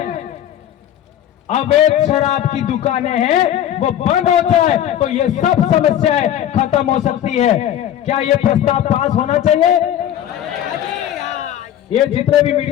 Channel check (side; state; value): right; quieter; 11.0 dB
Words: अवैध शराब की दुकानें हैं, वो बंद हो जाए तो ये सब समस्याएं खत्म हो सकती है। क्या ये प्रस्ताव पास होना चाहिए? ये जितने भी